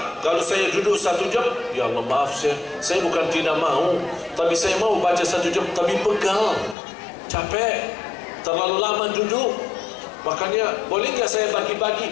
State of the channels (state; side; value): drops out; right; at 6.8 s